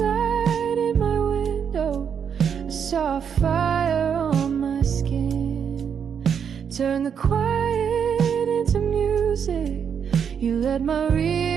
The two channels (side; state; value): left; quieter; 7.5 dB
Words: in my window. I saw a fire on my skin. Turn the quiet into music. You let my